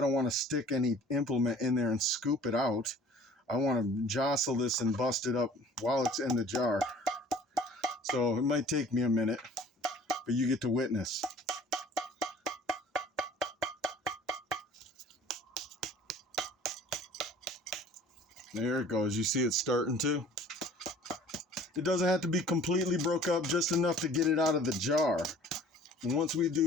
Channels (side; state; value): both; normal; correlation 0.49